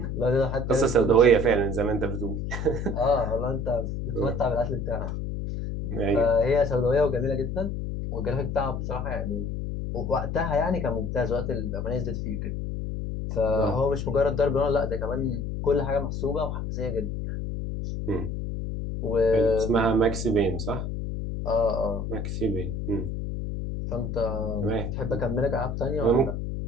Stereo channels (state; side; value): noise; left; hum, 4 dB below the sound